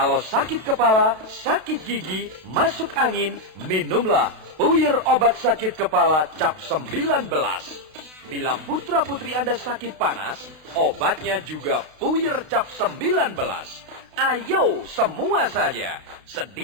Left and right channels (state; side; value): late; left; 32 ms